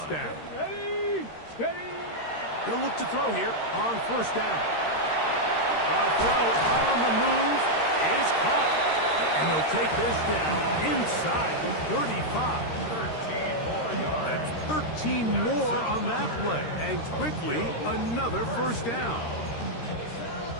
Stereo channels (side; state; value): right; late; 13 ms